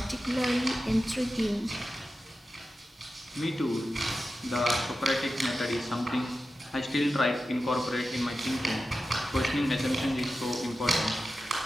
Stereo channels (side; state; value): both; normal; correlation 0.92